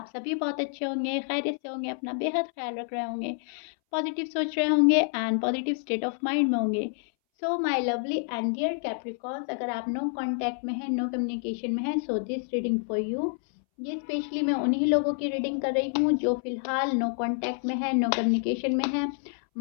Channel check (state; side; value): silent; right; 59 dB below the other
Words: सभी बहुत अच्छे होंगे, खैरियत से होंगे, अपना बेहद ख्याल रख रहे होंगे, पॉजिटिव सोच रहे होंगे and positive state of mind में होंगे। So my lovely and dear Capricorns, अगर आप नो कांटेक्ट में हैं, नो कम्युनिकेशन में हैं, so this reading for you. ये स्पेशली मैं उन्हीं लोगों की रीडिंग कर रही हूँ जो फिलहाल नो कांटेक्ट में है, नो कम्युनिकेशन में है।